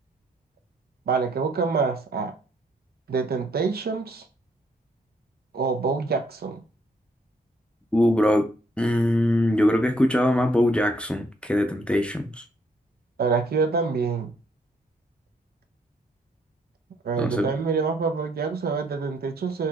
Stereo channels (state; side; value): normal; both; correlation 0.69